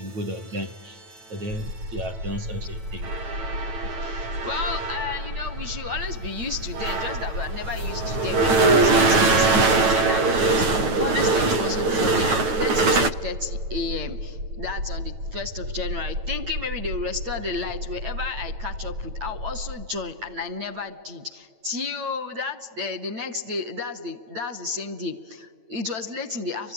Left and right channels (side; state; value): left; late; 9.0 ms